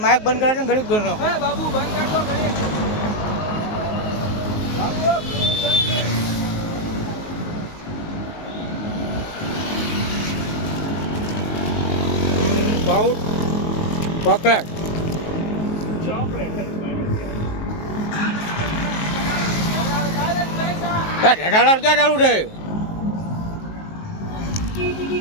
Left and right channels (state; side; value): late; right; 19 ms